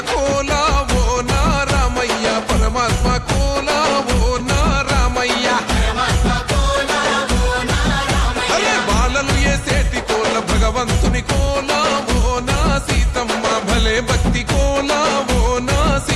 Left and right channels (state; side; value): identical; both; correlation 1.00